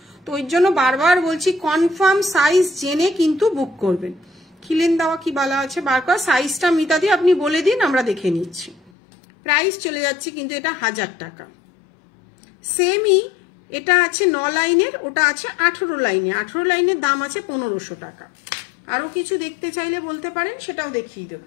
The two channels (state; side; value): drops out; right; at 8.9 s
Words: তো ওই জন্য বারবার বলছি কনফার্ম সাইজ জেনে কিন্তু বুক করবেন। খিলেন দেওয়া কি বলা আছে বার কর, সাইজটা মিতা দিয়ে আপনি বলে দিন, আমরা দেখে নিচ্ছি। প্রাইস চলে যাচ্ছে কিন্তু এটা 1000 টাকা। সেমই এটা আছে 9 লাইনের, ওটা আছে 18 লাইনে। 18 লাইনের দাম আছে 1500 টাকা। আরো কিছু দেখতে চাইলে বলতে পারেন, সেটাও দেখিয়ে